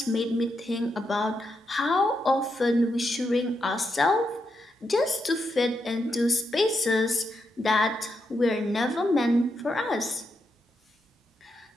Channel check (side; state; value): both; normal; correlation 0.83